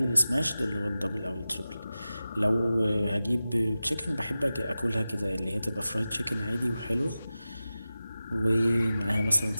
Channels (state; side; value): inverted; both; correlation -0.95